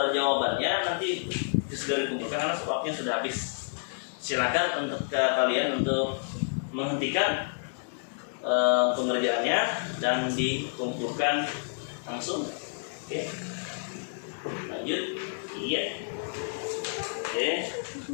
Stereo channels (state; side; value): silent; right; digital silence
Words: jawabannya nanti segera dikumpulkan karena waktunya sudah habis. Silakan untuk kalian untuk menghentikan pengerjaannya dan dikumpulkan langsung. Oke. Lanjut. Iya. Oke.